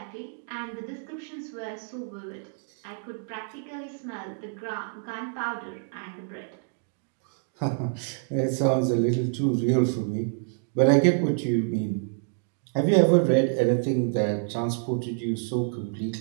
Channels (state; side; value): silent; left; digital silence